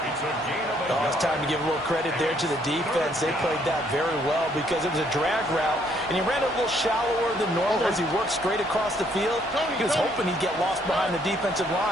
Oh, it's time to give a little credit there to the defense. They played that very well because it was a drag route, and he ran a little shallower than normal as he worked straight across the field. He was hoping he'd get lost behind the defensive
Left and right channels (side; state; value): left; noise; hum, 29 dB below the sound